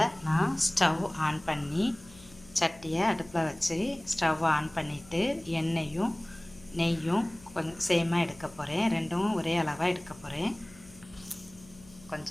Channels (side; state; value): left; noise; hum, 23 dB below the sound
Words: நான் ஸ்டவ் ஆன் பண்ணி சட்டியை அடுப்பில் வச்சு ஸ்டவ் ஆன் பண்ணிவிட்டு எண்ணெயும் நெய்யும் கொஞ்சம் சேமாக எடுக்க போகிறேன். ரெண்டும் ஒரே அளவாக எடுக்க போகிறேன்.